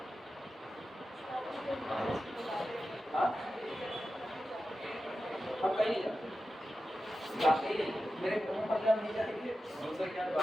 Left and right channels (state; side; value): normal; both; correlation 0.92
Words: हाँ हम कहीं नहीं जाते। जाते ही नहीं, मेरे मुंह पर जब नहीं जाएंगे उनसे क्या